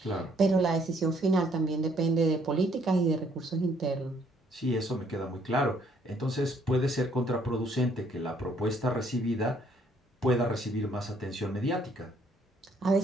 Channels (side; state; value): both; normal; correlation 0.66